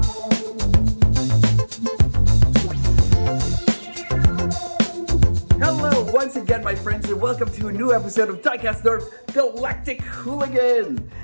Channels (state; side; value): inverted; both; correlation -1.00